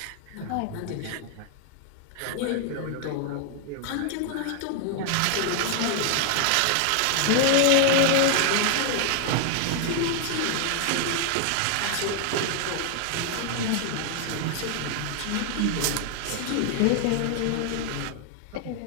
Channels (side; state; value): both; different; correlation 0.00